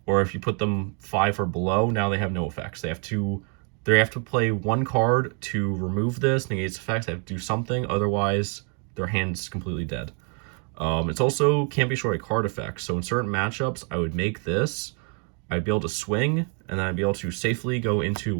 Or if you put them 5 or below, now they have no effects. They have to play 1 card to remove this, negate its effects. They have to do something, otherwise their hand's completely dead. It's also can't be short of card effects. So in certain matchups, I would make this. I'd be able to swing, and then I'd be able to safely go into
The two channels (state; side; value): quieter; left; 39.3 dB